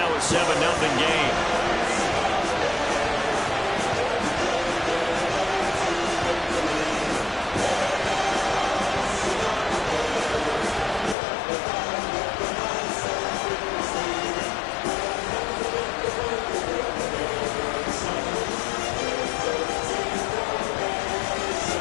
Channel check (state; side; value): drops out; right; at 11.2 s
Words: a 7-0 game.